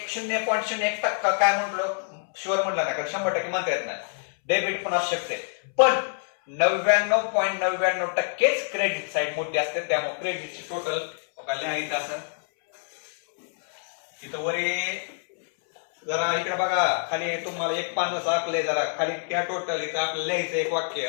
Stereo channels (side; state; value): right; silent; 61 dB below the other